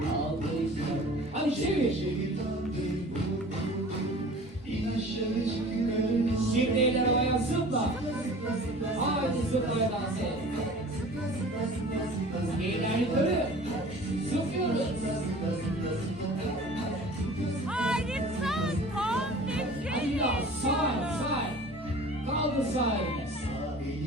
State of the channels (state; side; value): normal; both; correlation 0.44